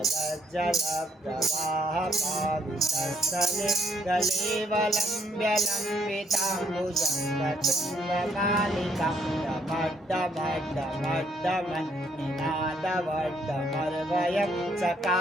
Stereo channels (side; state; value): both; normal; correlation 0.69